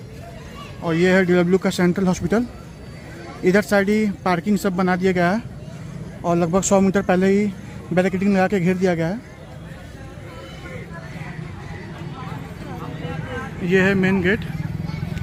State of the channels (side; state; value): both; identical; correlation 1.00